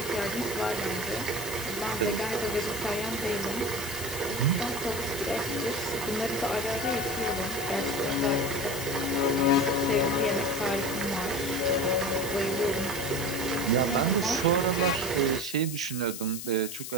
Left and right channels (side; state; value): left; noise; hiss, 8 dB below the sound